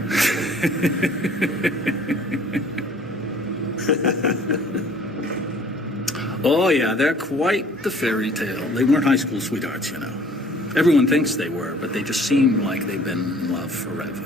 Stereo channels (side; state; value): both; normal; correlation 0.53